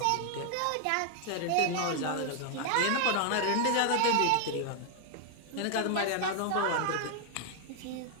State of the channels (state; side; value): different; both; correlation 0.00